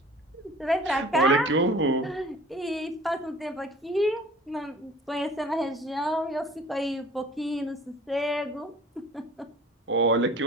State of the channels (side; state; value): both; normal; correlation 0.47